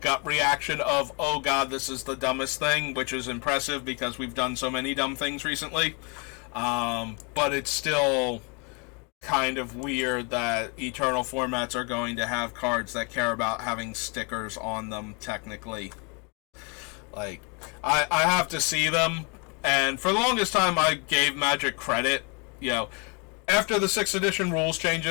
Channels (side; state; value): right; quieter; 33.1 dB